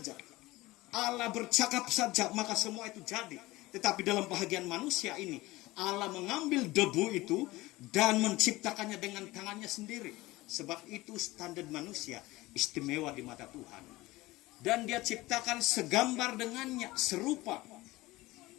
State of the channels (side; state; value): right; quieter; 19.6 dB